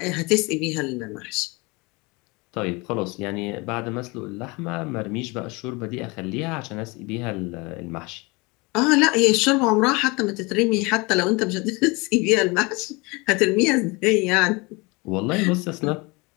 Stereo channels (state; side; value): quieter; right; 26.1 dB